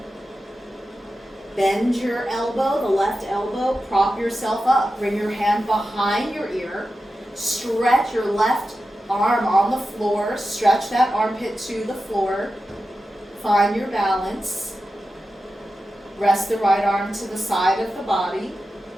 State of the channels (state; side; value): normal; both; correlation 0.92